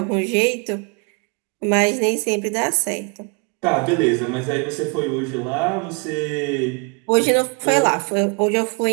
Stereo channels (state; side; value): quieter; left; 34.5 dB